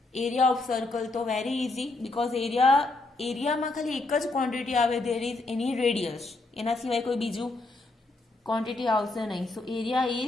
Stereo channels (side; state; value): right; quieter; 3.1 dB